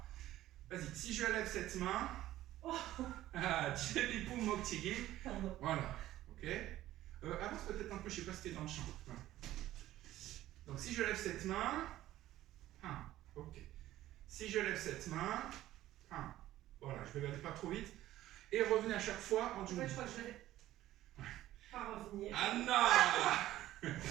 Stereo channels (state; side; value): quieter; left; 14.5 dB